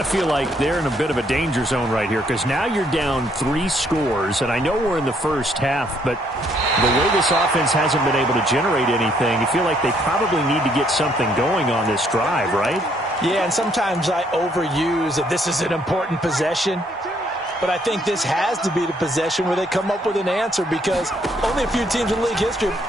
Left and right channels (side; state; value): both; normal; correlation 0.68